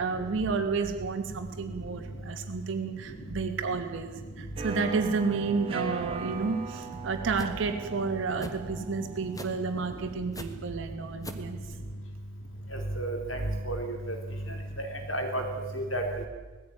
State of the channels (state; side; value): quieter; left; 3.5 dB